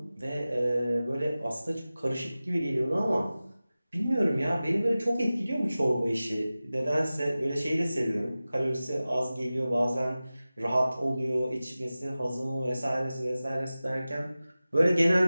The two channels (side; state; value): both; inverted; correlation -0.96